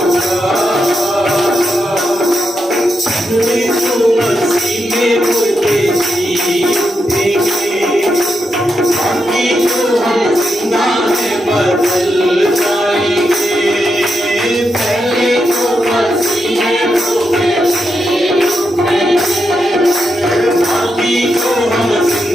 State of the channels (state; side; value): normal; both; correlation 0.85